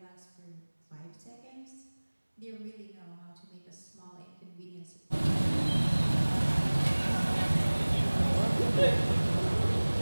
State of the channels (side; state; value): both; inverted; correlation -1.00